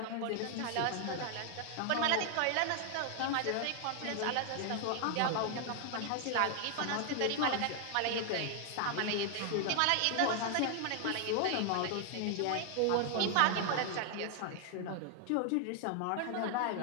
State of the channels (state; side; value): different; both; correlation 0.00